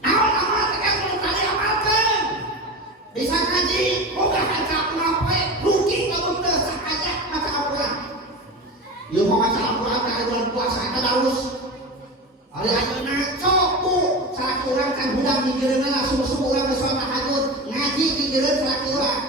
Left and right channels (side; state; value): both; normal; correlation 0.26